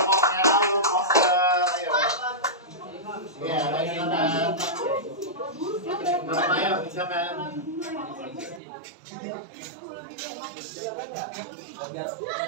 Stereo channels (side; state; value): left; drops out; at 8.6 s